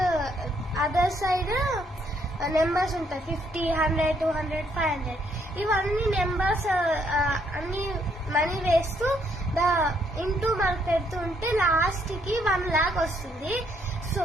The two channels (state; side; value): normal; both; correlation 0.71